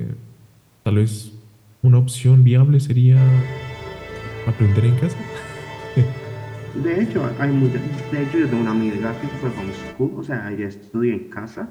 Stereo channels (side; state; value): both; identical; correlation 1.00